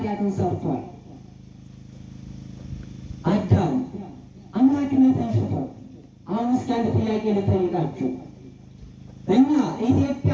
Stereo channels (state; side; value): identical; both; correlation 1.00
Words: ሰርቷል። አዳም አምላክነትን ሽቶ። አሁን እስኪ አንድ ጥያቄ ልጠይቃችሁ። እኛ